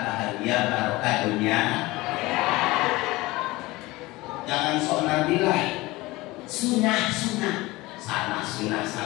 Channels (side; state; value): right; quieter; 20.6 dB